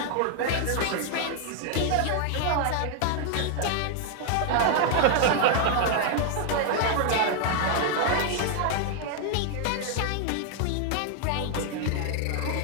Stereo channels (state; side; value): different; both; correlation 0.00